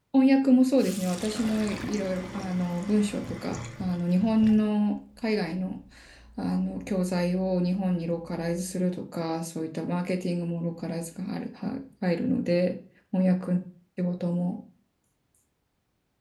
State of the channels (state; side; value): identical; both; correlation 1.00